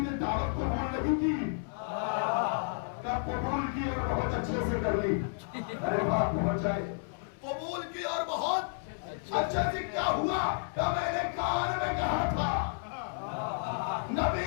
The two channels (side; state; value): right; silent; 57 dB below the other